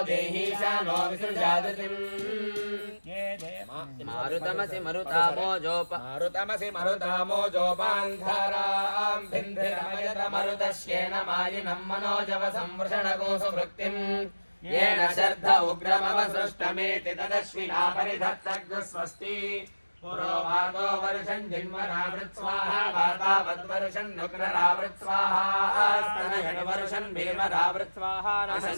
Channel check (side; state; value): both; inverted; correlation -1.00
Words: देहीशा no विसृजादितिम् मारुतमसि मरुतामोजोपान्धारां भिन्धिरमयत मरुतश्येन मायिनं मनोजवसंवृषणगोषु वृत्तिम् येन शर्ध उग्रमवसृष्टमेति तदश्विना परिधत्तग्स्वस्ति पुरोवातो version जिन्वरावृत्स्वाहा वातावद्वर्षन् नुग्ररावृत्स्वाहा स्तनयड्वर्षन् भीमरावृत्स्वाहा